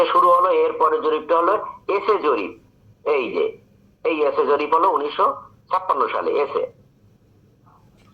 শুরু হলো, এরপরে জরিপটা হলো এসে জরিপ। এই যে এই এসে জরিপ হলো 1956 সালে এসে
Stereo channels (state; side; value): identical; both; correlation 1.00